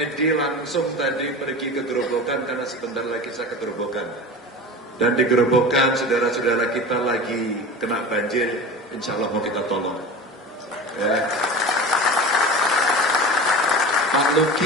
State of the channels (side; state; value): both; normal; correlation 0.32